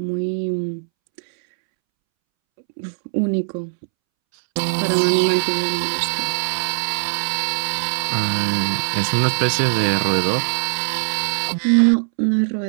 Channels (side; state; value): left; silent; 65 dB below the other